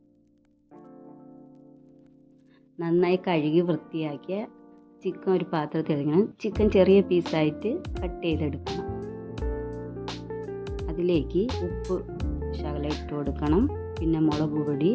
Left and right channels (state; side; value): identical; both; correlation 1.00